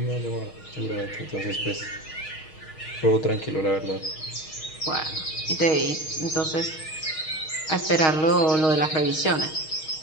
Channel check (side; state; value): right; late; 6.4 ms